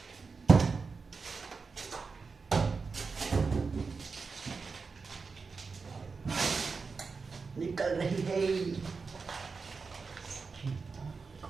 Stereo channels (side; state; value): left; quieter; 4.7 dB